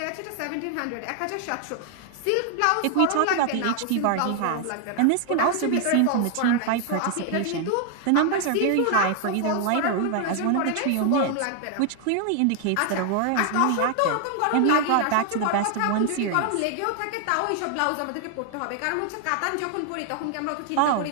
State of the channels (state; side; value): different; both; correlation 0.00